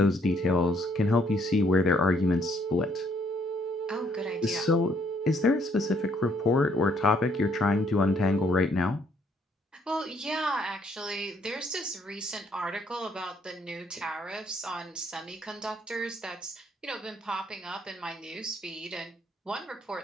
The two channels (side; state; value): both; normal; correlation 0.68